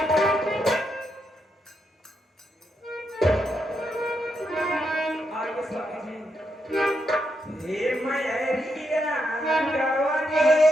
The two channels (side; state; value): both; normal; correlation 0.81